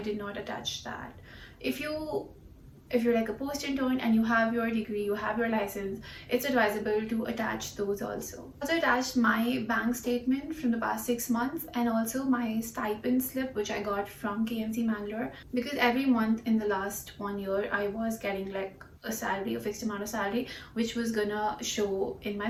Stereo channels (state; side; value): identical; both; correlation 1.00